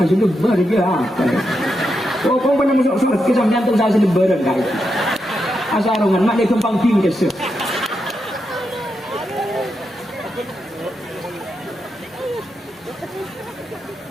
lebar aja. Oh, kau pernah masuk surga kisah jantung saya lebaran kak itu. Asarungan mak dia kembang tinggi kesel.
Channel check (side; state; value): both; normal; correlation 0.85